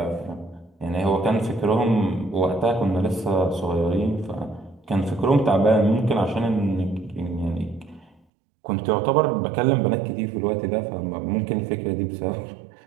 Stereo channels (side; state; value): left; drops out; at 8.2 s